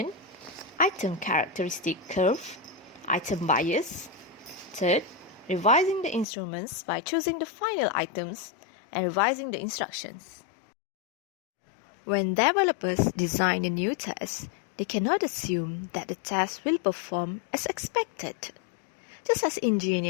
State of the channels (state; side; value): drops out; right; at 6.2 s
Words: item characteristic curve, item bias. Third, revising the instruments by choosing the final items and revising the instructions. When developers design a new test, they cannot assume that the test will perform as expected. Just as